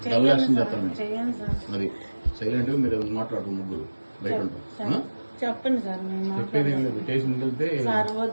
డబుల్ యాక్షన్ చేస్తాను అది సైలెంట్ గా మీరు మాట్లాడుతూ ముగ్గురు బయట ఉంటారు చెప్పండి సార్ చెప్పేది ఏం లేదు స్టేషన్కి వెళ్తే సార్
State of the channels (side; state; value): both; inverted; correlation -1.00